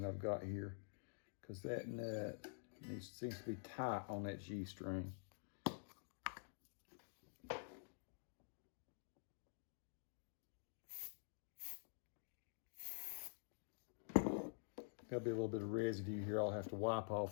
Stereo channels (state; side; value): silent; right; digital silence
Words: that I've got here, because that nut seems to be tight on that G string. There'll be a little bit of residue here I'll have to wipe